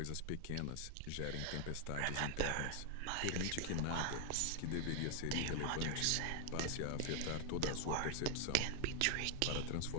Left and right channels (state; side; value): different; both; correlation 0.00